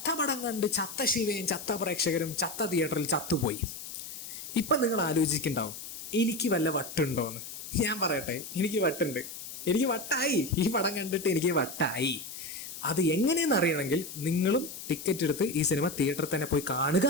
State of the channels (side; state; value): left; noise; hiss, 10 dB below the sound